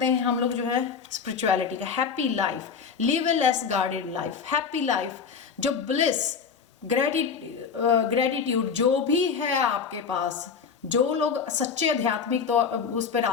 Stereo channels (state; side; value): quieter; right; 6.2 dB